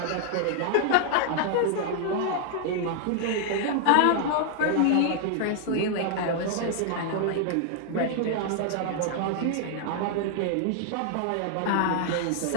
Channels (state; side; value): different; both; correlation 0.00